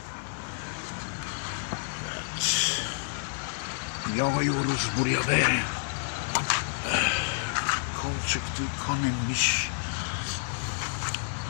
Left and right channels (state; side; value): silent; right; digital silence